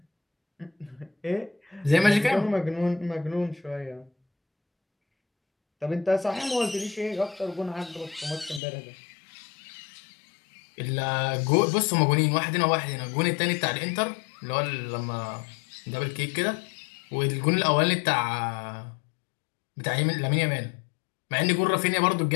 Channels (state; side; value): drops out; right; at 8.6 s